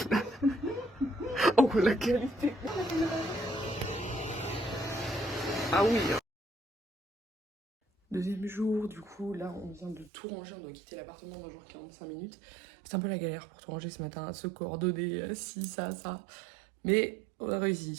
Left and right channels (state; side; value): drops out; left; at 10.1 s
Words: Oh la qualité. Ah oui. Deuxième jour, du coup, là on vient de tout ranger, on doit quitter l'appartement dans genre 45 minutes. C'est un peu la galère pour tout ranger ce matin, se coordonner, ci, ça. Mais on a